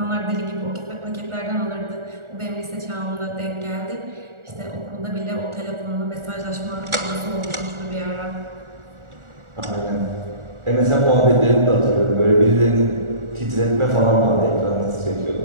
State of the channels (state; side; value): late; left; 1.4 ms